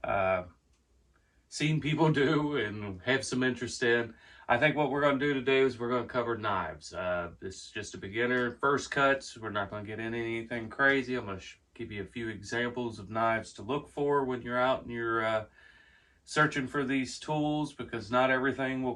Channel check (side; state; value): both; identical; correlation 1.00